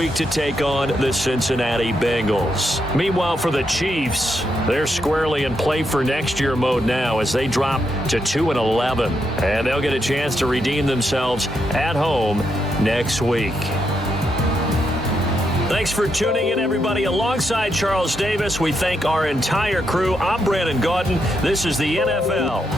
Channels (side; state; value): both; normal; correlation 0.81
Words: to take on the Cincinnati Bengals. Meanwhile, for the Chiefs, they're squarely in play for next year mode now as they drop to 2-11. And they'll get a chance to redeem themselves at home next week. Thanks for tuning in, everybody. Alongside Charles Davis, we thank our entire crew. I'm Brandon Gaudin. This is the NFL